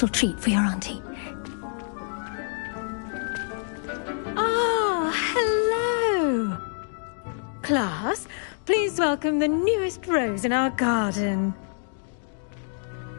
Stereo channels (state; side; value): silent; right; 61 dB below the other